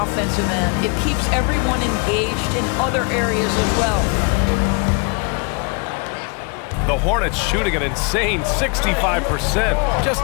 offensive end, it keeps everyone engaged in other areas as well. The Hornets shooting an insane 65%. Just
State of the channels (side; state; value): right; quieter; 32.2 dB